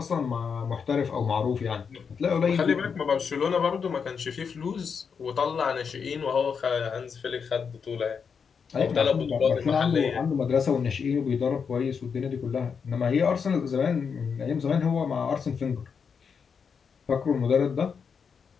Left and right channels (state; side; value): quieter; right; 6.2 dB